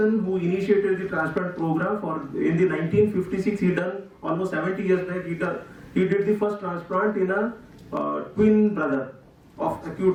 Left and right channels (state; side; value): identical; both; correlation 1.00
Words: who initiated the transplant program. In the 1956, he done almost 70 years back. He did the first transplant in a twin brother of